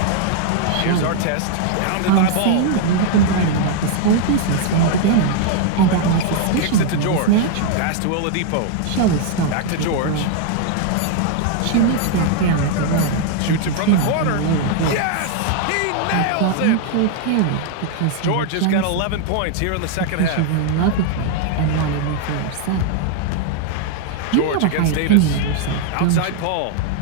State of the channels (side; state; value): both; different; correlation 0.00